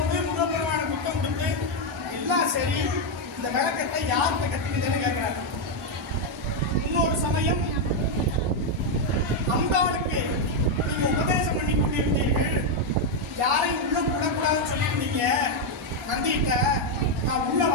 முருகப்பெருமான புத்தம் கொடுத்து எல்லாம் சரி, இந்த விளக்கத்தை யார்கிட்ட கட்டிக்கிட்டேன்னு கேட்கிறாரு. இன்னொரு சமயம் அம்பாளுக்கு நீங்க உபதேசம் பண்ணி கொண்டிருந்தீர்கள், யாரையும் உள்ள விடக்கூடாதுன்னு சொல்லியிருந்தீங்க. நந்திட்ட நான் உள்ள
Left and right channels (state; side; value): normal; both; correlation 0.02